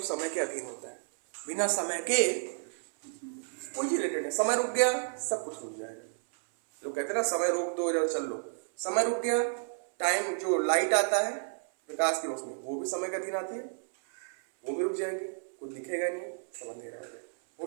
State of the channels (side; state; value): left; silent; 57 dB below the other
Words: समय के अधीन होता है। बिना समय के कोई चीज रिलेटेड है। समय रुक गया, सब कुछ रुक जाएगा। लोग कहते हैं ना समय रोक दो इधर चल लो, समय रुक गया। टाइम जो लाइट आता है प्रकाश की रोशनी, वो भी समय के अधीन आती है, वो भी रुक जाएगी, कुछ दिखेगा नहीं, सब अंधेरा हो